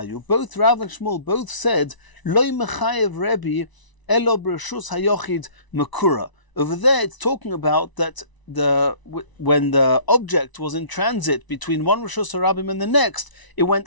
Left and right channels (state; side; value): late; right; 1.0 ms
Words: both Rav and Shmuel both said, Loy mechayev Rebbe, elo b'reshus hayochid makura. Over there it's talking about that when the object was in transit between one Rishus Harabim and the next, it